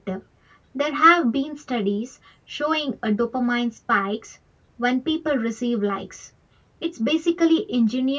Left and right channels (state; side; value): identical; both; correlation 1.00